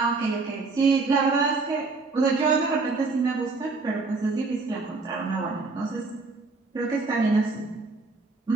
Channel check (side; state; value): left; quieter; 3.9 dB